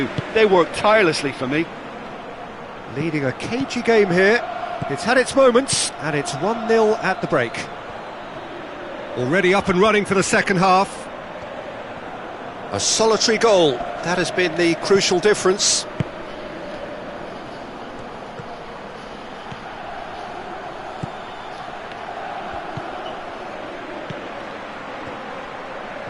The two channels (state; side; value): identical; both; correlation 1.00